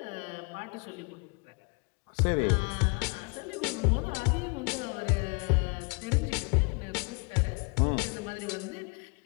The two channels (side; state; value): right; quieter; 33.0 dB